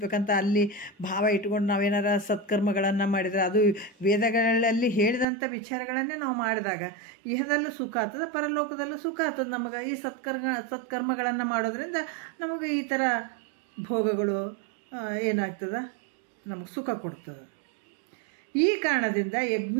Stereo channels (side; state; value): left; drops out; at 5.2 s